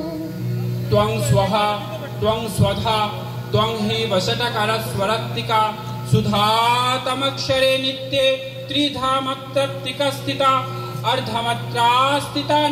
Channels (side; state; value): both; identical; correlation 1.00